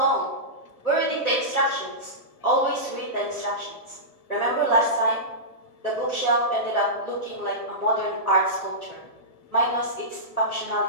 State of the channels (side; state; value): right; late; 1.7 ms